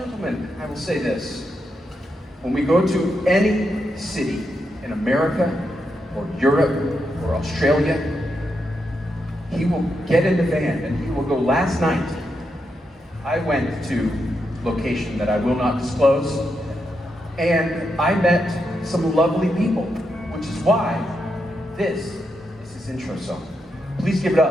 I will say this. When we go to any city in America or Europe or Australia, he will get in the van and he will go. Last night, I went to a location that I will not disclose, and I met some lovely people, which is why this is his intro song. Please give it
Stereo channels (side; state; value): both; normal; correlation 0.84